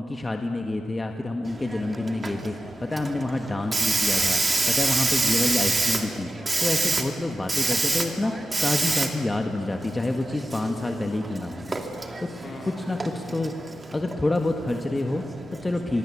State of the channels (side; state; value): both; normal; correlation 0.93